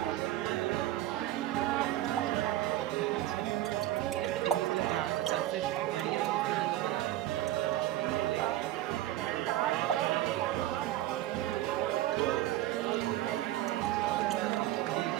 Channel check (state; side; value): quieter; left; 14.4 dB